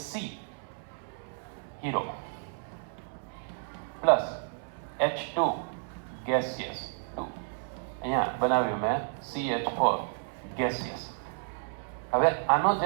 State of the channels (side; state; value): left; silent; 57 dB below the other